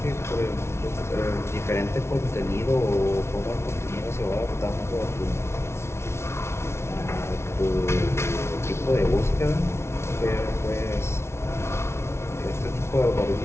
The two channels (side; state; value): right; late; 0.13 ms